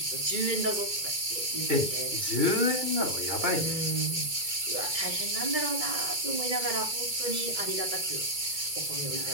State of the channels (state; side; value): late; left; 2.3 ms